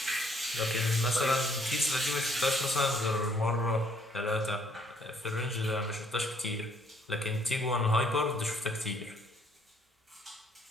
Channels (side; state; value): both; normal; correlation 0.66